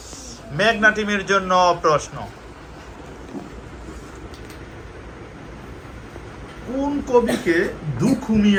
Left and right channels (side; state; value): both; identical; correlation 1.00